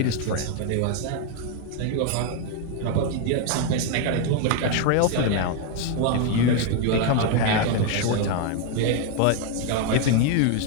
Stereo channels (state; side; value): different; both; correlation 0.01